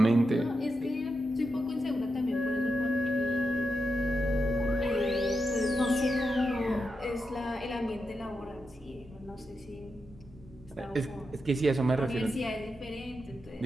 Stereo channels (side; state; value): both; normal; correlation 0.87